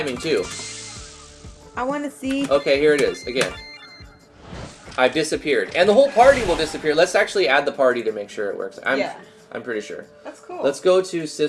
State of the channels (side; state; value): both; identical; correlation 1.00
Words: too. I want to see. Okay, here it is again. I've disappeared, and the whole party will disappear. Let's actually add the party to make sure it works. I'm pretty sure. That's cool. Let's go to